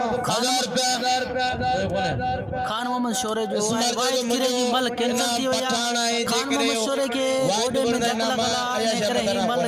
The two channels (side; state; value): both; identical; correlation 1.00